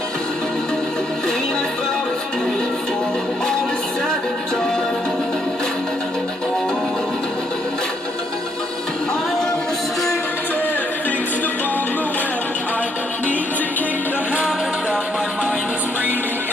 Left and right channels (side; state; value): both; normal; correlation 0.72